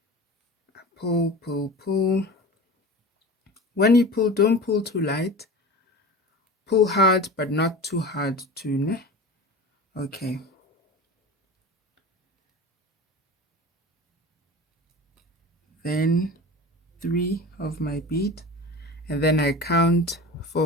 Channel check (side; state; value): both; normal; correlation 0.33